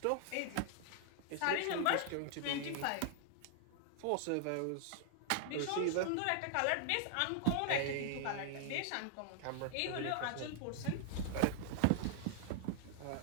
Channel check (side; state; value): both; different; correlation 0.00